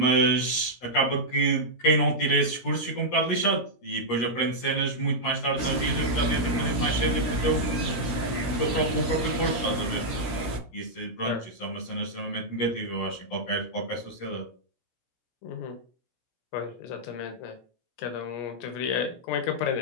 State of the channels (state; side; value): late; right; 17 ms